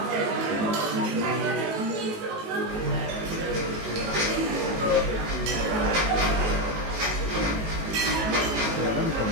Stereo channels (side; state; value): left; late; 19 ms